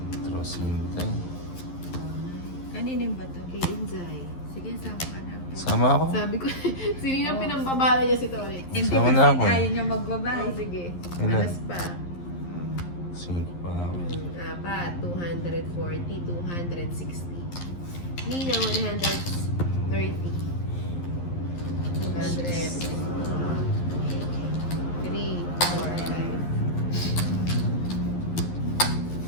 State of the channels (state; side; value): late; right; 11 ms